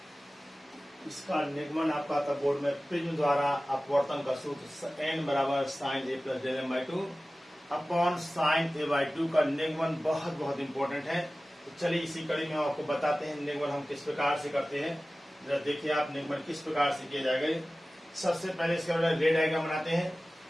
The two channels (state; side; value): normal; both; correlation 0.97